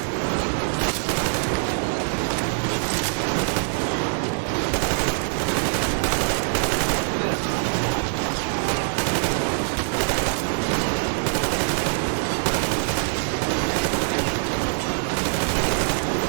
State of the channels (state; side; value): silent; left; 63 dB below the other